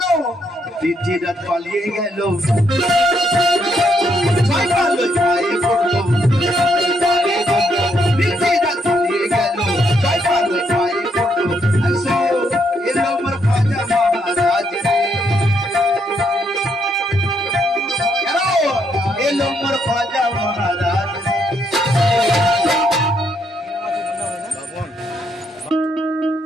দ্বিতীয় রাত পালিয়ে গেল, পায়ে পড়লো, দ্বিতীয় রাত পালিয়ে গেল, পায়ে পড়লো। এলো আমার খ্বাজা মহারাজ রে, এলো আমার খ্বাজা মহারাজ।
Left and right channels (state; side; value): normal; both; correlation 0.74